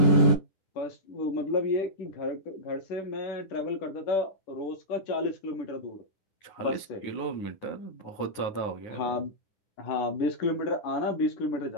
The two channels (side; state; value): right; late; 9.5 ms